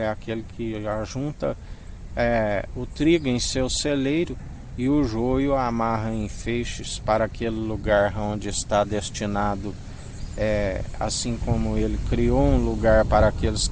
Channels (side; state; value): both; identical; correlation 1.00